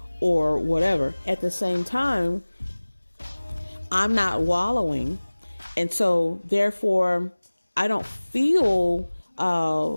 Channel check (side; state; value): both; inverted; correlation -1.00